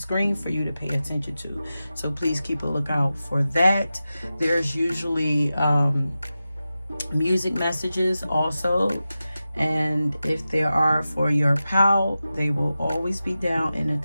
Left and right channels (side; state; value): both; inverted; correlation -0.93